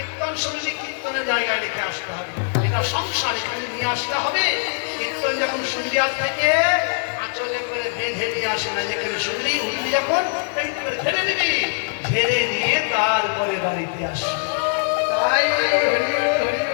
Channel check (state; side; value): silent; right; digital silence